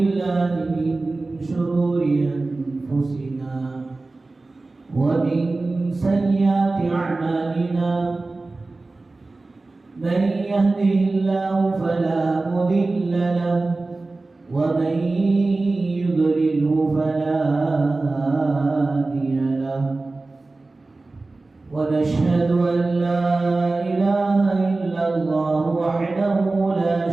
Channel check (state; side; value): quieter; left; 3.3 dB